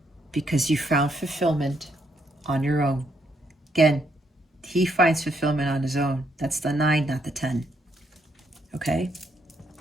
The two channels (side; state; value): both; normal; correlation 0.75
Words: because you found fulfillment on your own. Again, He finds fulfillment on his own. That's the 9, not the 10. Okay?